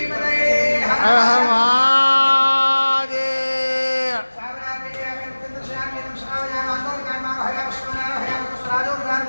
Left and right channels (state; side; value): inverted; both; correlation -1.00